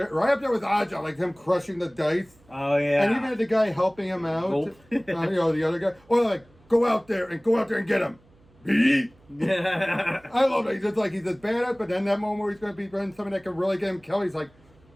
up there with Aja, like him crushing the dice. Oh yeah. And even had the guy helping him out. The other guy. Or like, go out there and get him. I love it. He's just badass, but then that moment where he's going to be running something that can really get him killed, he's like,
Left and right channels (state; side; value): noise; right; hum, 30 dB below the sound